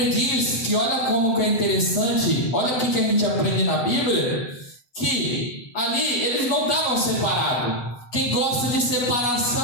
diz que olha como que é interessante, olha o que a gente aprende na Bíblia, que ali eles não estavam separados. Quem gosta de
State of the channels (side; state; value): right; late; 8.2 ms